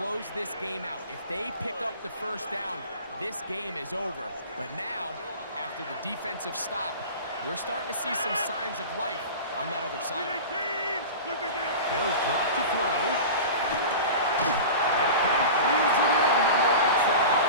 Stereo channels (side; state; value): both; inverted; correlation -0.33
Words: this game out. If they pick up the first down, this game is over. But now, after the defensive stop, we're starting to see some signs of life on that other side. They'll drop to throw. That pass reels it in on the right side.